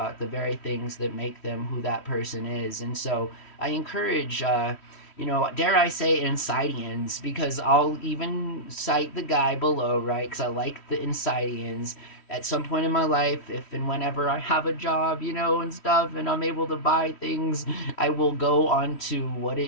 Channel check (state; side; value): late; right; 3.1 ms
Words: the very things that make them who that person is. And so I encourage, dare I say, Insidians, because I'll even cite the guy below, right? Because I like the Insidians. At some point in my life, if and whenever I have a job, and stuff, and I'm able to buy things, I will go on to What